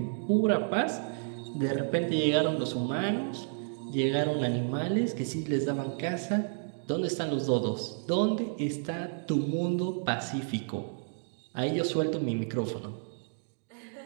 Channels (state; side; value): silent; left; digital silence